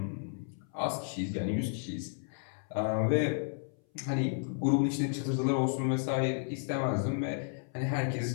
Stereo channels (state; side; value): silent; right; 56 dB below the other